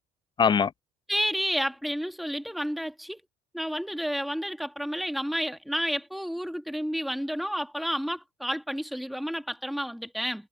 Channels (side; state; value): both; normal; correlation 0.83